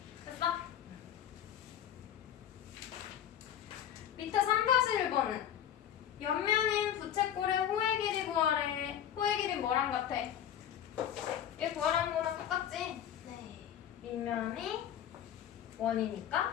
됐어? 밑에 3-1번은 옆면인 부채꼴의 호의 길이 구하래. 호의 길이 뭐랑 같아? 얘 구하라는 거랑 똑같지? 네. 밑면이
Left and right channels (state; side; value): quieter; right; 10.2 dB